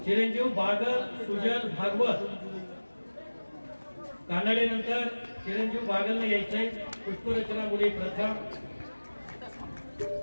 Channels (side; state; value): both; inverted; correlation -1.00